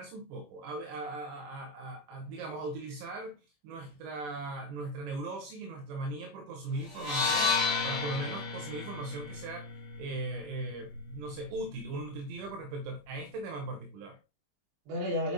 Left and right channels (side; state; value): left; late; 20 ms